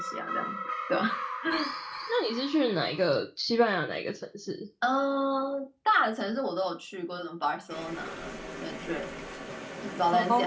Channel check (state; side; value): identical; both; correlation 1.00